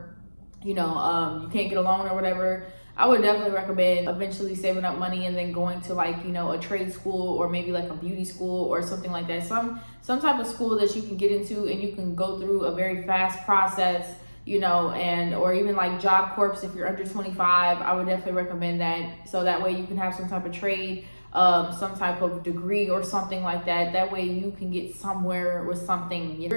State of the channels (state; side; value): inverted; both; correlation -1.00